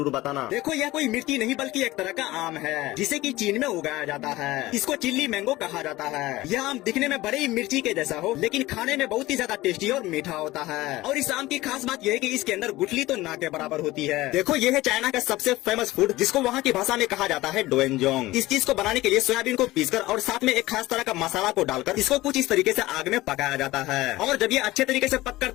बताना। देखो यह कोई मिर्ची नहीं बल्कि एक तरह का आम है जिसे की चीन में उगाया जाता है। इसको चिल्ली मैंगो कहा जाता है। यह आम दिखने में बड़े ही मिर्ची के जैसा हो लेकिन खाने में बहुत ही ज्यादा टेस्टी और मीठा होता है। और इस आम की खास बात यह है कि इसके अंदर गुठली तो ना के बराबर होती है। देखो ये है चाइना का सबसे फेमस फूड जिसको वहाँ की भाषा में कहा जाता है डोएनजोंग। इस चीज को बनाने के लिए सोयाबीन को पीसकर और साथ में एक खास तरह का मसाला को डालकर इसको कुछ इस तरीके से आग में पकाया जाता है। और जब ये अच्छे तरीके से पककर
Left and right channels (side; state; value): right; quieter; 18.2 dB